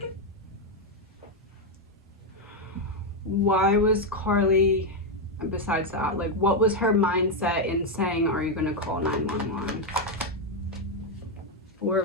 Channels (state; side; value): normal; both; correlation 0.03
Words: Why was KARLIE... Besides that, like, what was her mindset in saying, are you going to call 911? 4